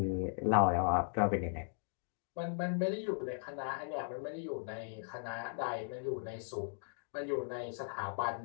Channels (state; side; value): silent; right; digital silence